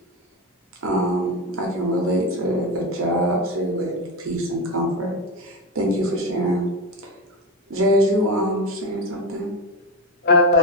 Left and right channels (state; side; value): normal; both; correlation 0.16